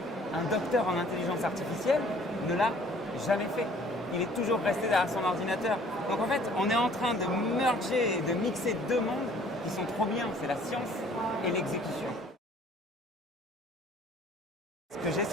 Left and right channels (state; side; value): normal; both; correlation 0.55